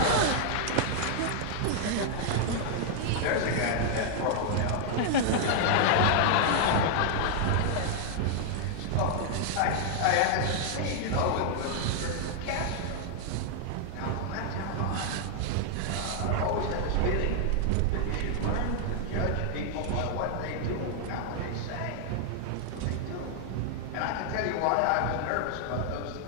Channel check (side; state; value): both; different; correlation -0.01